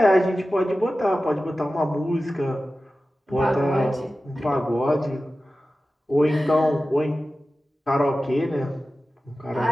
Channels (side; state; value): both; normal; correlation 0.95